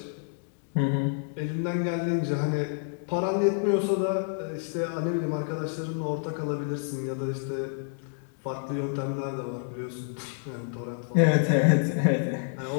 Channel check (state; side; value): silent; right; digital silence